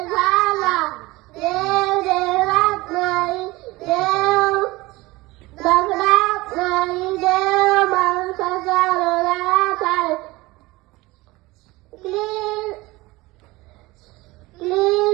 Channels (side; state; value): left; quieter; 20.9 dB